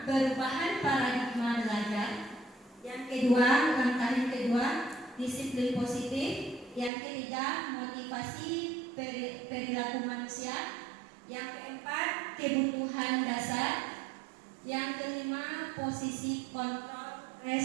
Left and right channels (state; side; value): drops out; left; at 6.9 s